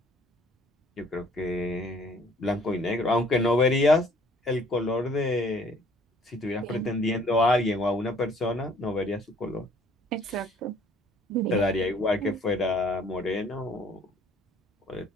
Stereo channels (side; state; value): both; normal; correlation 0.58